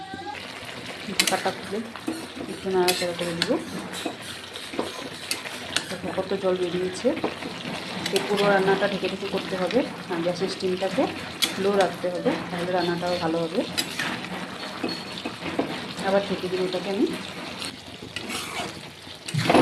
ঢাকাটা খুলে একটু নাড়াচাড়া করে দিব। দেখো কত জল বেরিয়েছে। এই পুরো রান্নাটা ঢেকে ঢেকে করতে হবে আর গ্যাসের স্টিমটাকে লো রাখতে হবে, তাহলে রান্নাটাও ভালো হবে। আবার ঢেকে দিব এটাকে আমি।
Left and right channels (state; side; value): identical; both; correlation 1.00